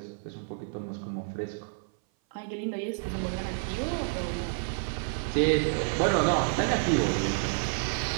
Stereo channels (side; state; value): left; silent; 57 dB below the other